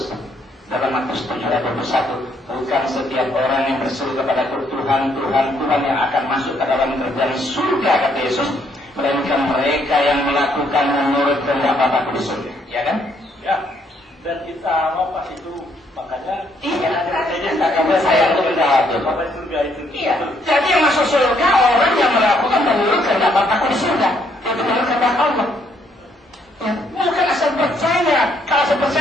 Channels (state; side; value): normal; both; correlation 0.70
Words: dalam Matius 7:21, bukan setiap orang yang berseru kepada Tuhan, Tuhan, Tuhan yang akan masuk ke dalam kerjaan surga kata Yesus, melainkan mereka yang melakukan menurut kehendak Bapa di surga, ya kan? Ya. Dan kita mau pas itu makanya iya, karena saya itu menjawab itu. Bapak surga itu. Iya. Jadi yang masuk surga orang yang melakukan menurut kehendak Bapa di surga, itu menurut kehendak Allah. Ya, bukan asal percaya. Kalau asal